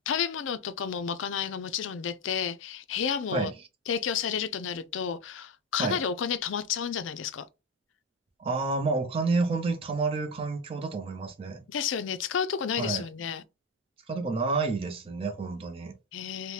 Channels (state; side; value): normal; both; correlation 0.16